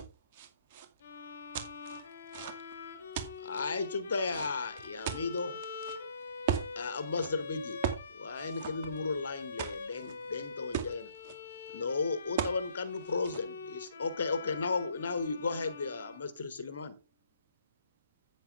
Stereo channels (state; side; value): inverted; both; correlation -0.65